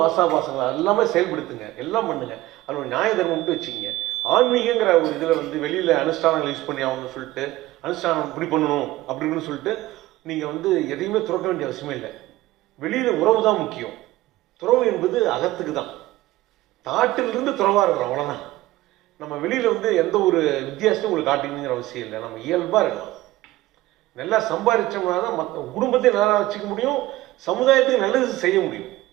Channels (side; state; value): left; quieter; 17.2 dB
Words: ஆசாபாசங்கள் எல்லாமே செயல்படுத்துங்க, எல்லாம் பண்ணுங்க. அது ஒரு நியாய தர்மம் மட்டும் வச்சுக்கிங்க. ஆன்மீகங்கிற ஒரு இதில் வந்து வெளியில் அனுஷ்டானங்கள் யூஸ் பண்ணி ஆகணும்னு சொல்லிட்டு, அனுஷ்டானம் இப்படி பண்ணணும் அப்படின்னு சொல்லிட்டு நீங்கள் வந்து எதையுமே துறக்க வேண்டிய அவசியமே இல்லை. வெளியில் உறவு தான் முக்கியம். துறவு என்பது அகத்துக்கு தான். தாட்டிலிருந்து துறவாக இருக்கிறோம், அவ்வளோதான். நம்ம வெளியில் வந்து எந்த ஒரு வித்தியாசத்தையும் உங்களுக்கு காட்டிக்கணுங்கிற அவசியம் இல்லை. நம்ம இயல்பாக இருக்கலாம். நல்லா சம்பாதிச்சோம்னா தான் மற்ற குடும்பத்தையும் நல்லா வச்சுக்க முடியும், சமுதாயத்துக்கு நல்லது செய்ய முடியும்.